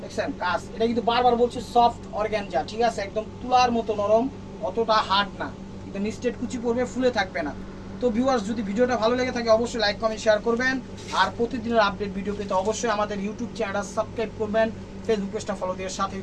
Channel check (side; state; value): both; identical; correlation 1.00